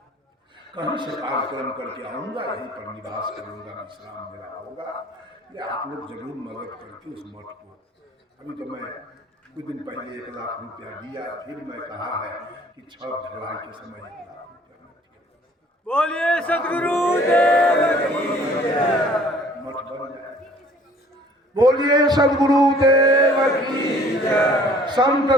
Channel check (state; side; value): normal; both; correlation 0.54